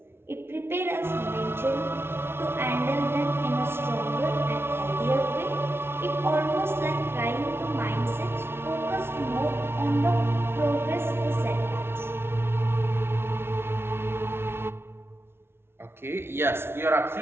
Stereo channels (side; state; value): left; late; 0.12 ms